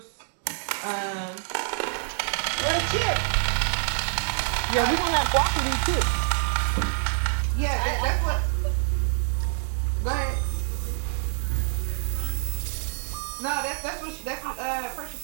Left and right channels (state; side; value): silent; left; digital silence